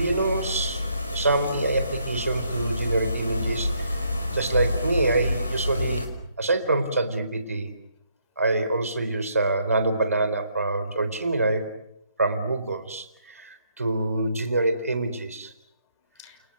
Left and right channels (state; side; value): inverted; both; correlation -0.72